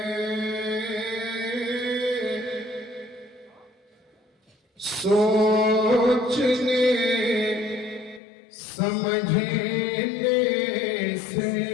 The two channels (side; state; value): right; drops out; at 8.2 s